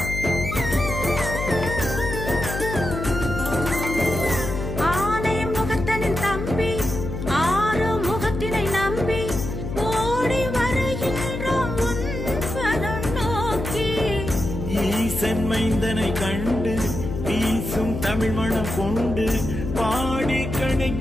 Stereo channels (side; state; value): left; noise; hum, 5 dB below the sound